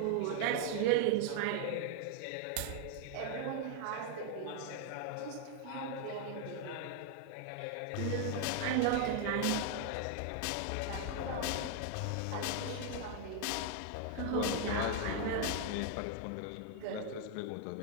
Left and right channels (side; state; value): both; different; correlation 0.00